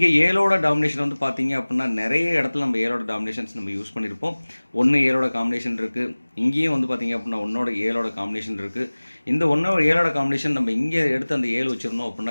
7ஓட டாமினேஷன் வந்து பார்த்தீங்க அப்படின்னா நிறைய இடத்துல நம்ம 7ஓட டாமினேஷன்ஸ் நம்ம யூஸ் பண்ணியிருப்போம். 1 7ஓட காம்பினேஷன் இருக்குது. இங்கேயும் வந்து பார்த்தீங்க அப்படின்னா 1ஓட 7ஓட காம்பினேஷன் இருக்குது. இந்த 1ஓட 7ஓட காம்பினேஷன் நம்ம இங்கே எடுத்து அந்த 7 வச்சுருந்தோம்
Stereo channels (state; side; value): inverted; both; correlation -1.00